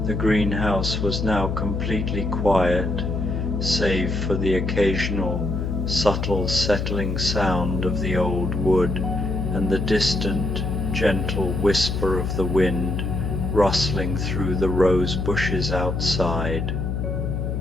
The greenhouse was now completely quiet, save for the occasional, subtle settling sound of the old wood and the distant, gentle whisper of the wind rustling through the rose bushes outside.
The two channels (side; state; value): left; noise; hum, 1 dB below the sound